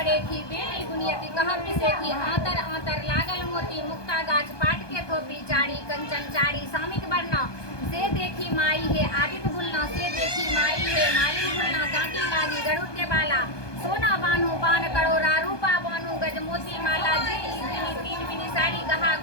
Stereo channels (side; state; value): right; late; 1.2 ms